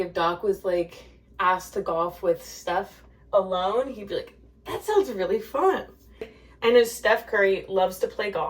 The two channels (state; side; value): identical; both; correlation 1.00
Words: Doc was like asked to golf with Steph alone, he'd be like, that sounds really fun. I know Steph Curry loves to play